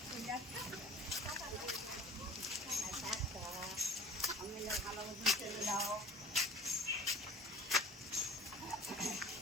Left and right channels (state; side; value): normal; both; correlation 0.45